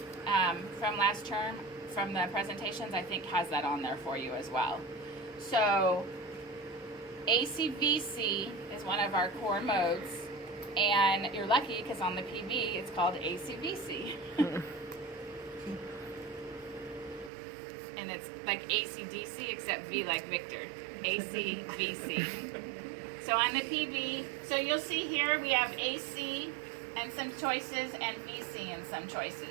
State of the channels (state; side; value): drops out; left; at 17.3 s